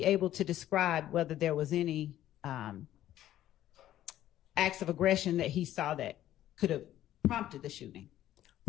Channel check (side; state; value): right; quieter; 12.9 dB